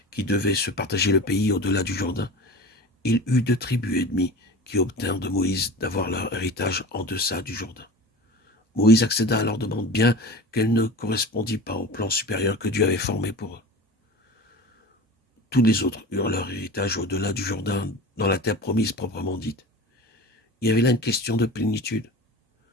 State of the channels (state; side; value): normal; both; correlation 0.34